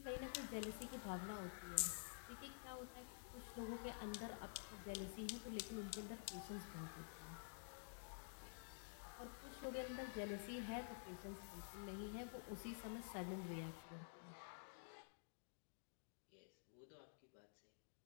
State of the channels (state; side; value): silent; right; digital silence